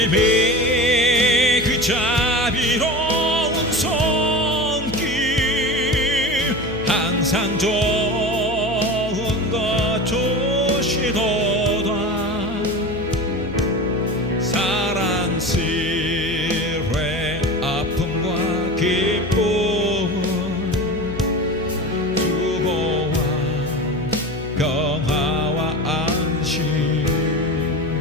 그 자비로운 손길 항상 좋은 것 주시도다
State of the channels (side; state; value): left; noise; hum, 12 dB below the sound